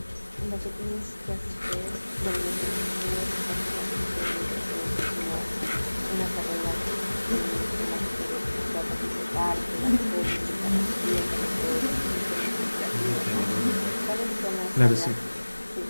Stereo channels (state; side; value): inverted; both; correlation -1.00